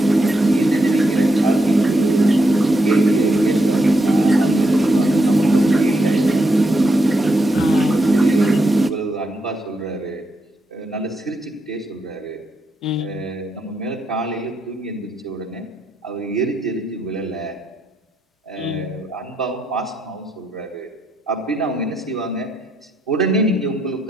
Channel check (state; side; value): normal; both; correlation 0.81